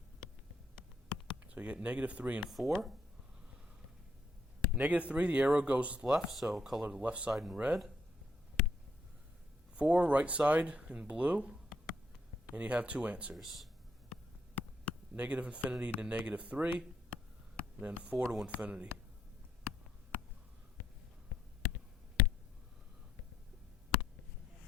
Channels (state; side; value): normal; both; correlation 0.73